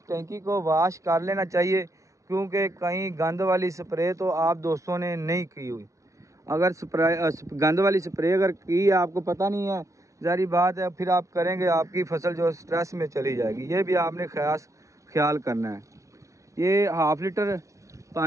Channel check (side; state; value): left; late; 0.15 ms